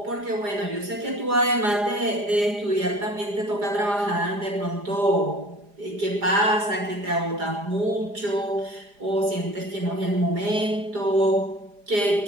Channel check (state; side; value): late; left; 4.9 ms